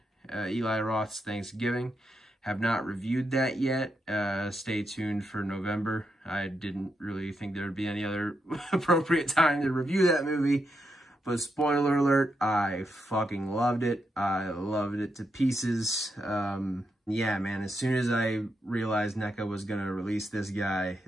Eli Roth's Thanksgiving. Have not reviewed that yet. Stay tuned for November. I didn't really think there would be any other appropriate time to review that movie. But spoiler alert, I fucking loved it. I loved it to pieces. Yeah, man, as soon as I realized NECA was going to release this guy,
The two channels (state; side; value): normal; both; correlation 0.83